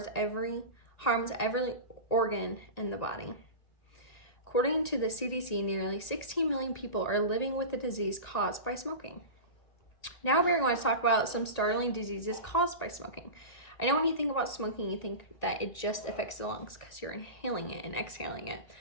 every organ in the body. According to the CDC, nearly 16 million people are living with the disease caused by smoking. Now we're going to talk about some startling diseases caused by smoking. I know when you think about smoking, you think that it just affects the lungs because you're inhaling it and exhaling it,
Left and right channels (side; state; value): right; late; 1.9 ms